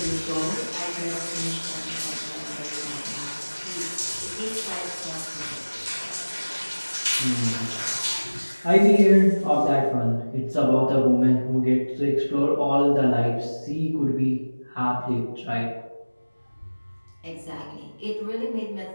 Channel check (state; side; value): inverted; both; correlation -1.00